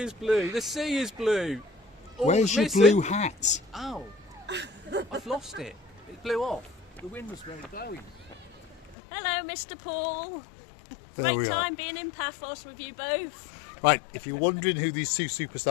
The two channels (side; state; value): right; drops out; at 9.0 s